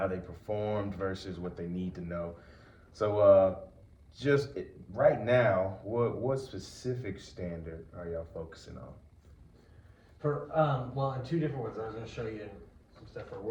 they performed versus what they need to know. So, right now, what specific standard are y'all focusing on? For, well, in two different ones, I was gonna show you some stuff for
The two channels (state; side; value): identical; both; correlation 1.00